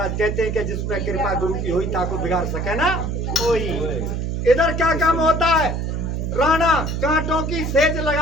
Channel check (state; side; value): noise; right; hum, 2 dB below the sound